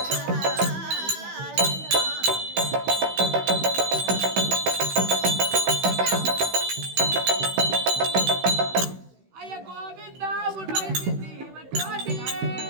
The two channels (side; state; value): left; late; 16 ms